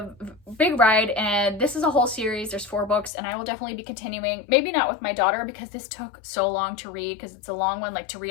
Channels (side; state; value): right; drops out; at 3.1 s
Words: big ride, and this is a whole series. There's 4 books, and I will definitely be continuing. Maybe not with my daughter because this took so long to read, because it's a long one, like to